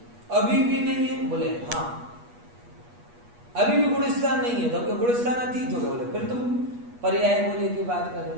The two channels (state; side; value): late; left; 8.3 ms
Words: अभी भी नहीं है। बोले हाँ अभी भी गुणस्थान नहीं है, तो हमको गुणस्थान अतीत हो गया। बोले फिर तुम पर्याय बोले की बात कर रहे